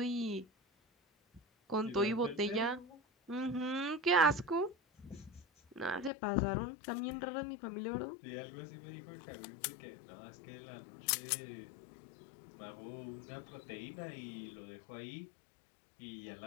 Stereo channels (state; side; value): drops out; right; at 6.1 s